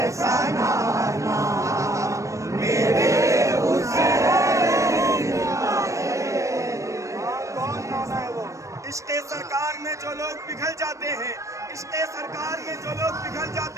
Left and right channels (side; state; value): left; late; 0.15 ms